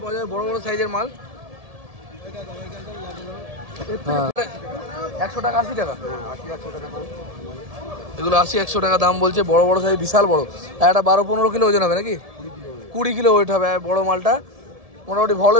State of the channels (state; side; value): late; left; 1.7 ms